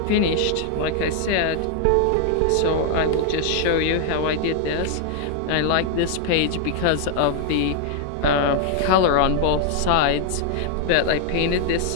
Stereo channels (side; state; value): both; different; correlation 0.00